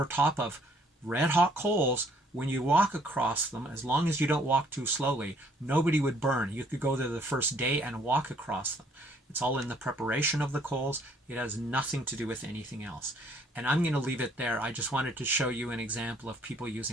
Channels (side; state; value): both; normal; correlation 0.62